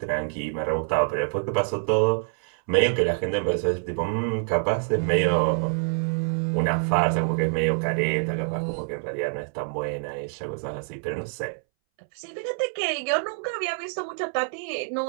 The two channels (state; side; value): silent; left; 61 dB below the other